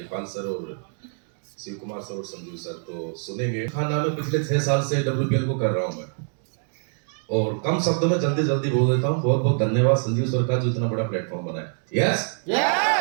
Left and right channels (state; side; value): silent; left; 55 dB below the other